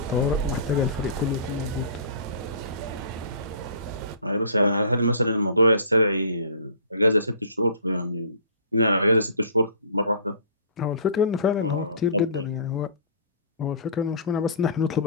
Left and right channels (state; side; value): inverted; both; correlation -0.44